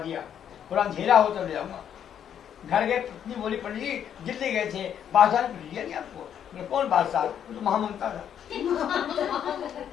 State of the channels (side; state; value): right; quieter; 9.2 dB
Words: पूरा अंधेरा हो तब ले आऊंगा। घर गए, पत्नी बोली पंडित जी दिल्ली गए थे, बादशाह ने पूछ दिया नहीं आपको? मैं कौन बादशाह? वो तो महामंता था।